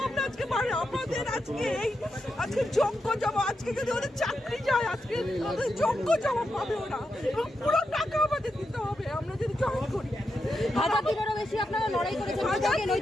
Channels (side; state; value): both; normal; correlation 0.86